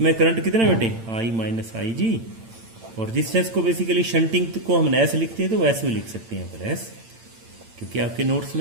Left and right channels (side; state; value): left; late; 8.9 ms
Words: करंट कितना बेटे, आई माइनस आई जी। और रेजिस्टेंस को बेसिकली शंटिंग को हम एस लिखते हैं, तो एस भी लिख सकते हैं यहाँ पर एस, क्योंकि आपके नोट्स